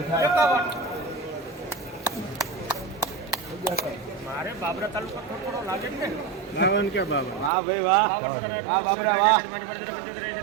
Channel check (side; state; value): left; drops out; at 7.5 s